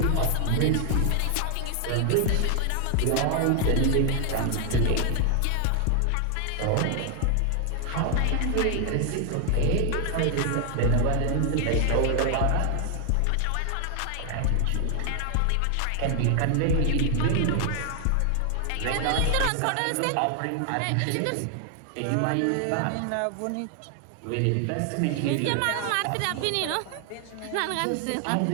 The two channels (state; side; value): different; both; correlation 0.00